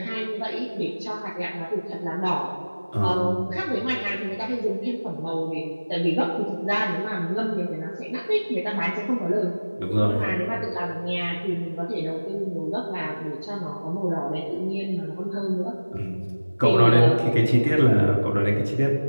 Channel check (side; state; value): both; inverted; correlation -1.00